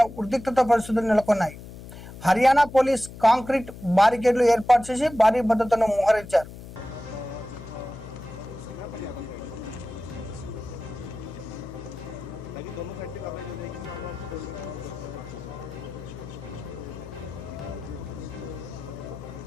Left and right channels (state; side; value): noise; left; hum, 14 dB below the sound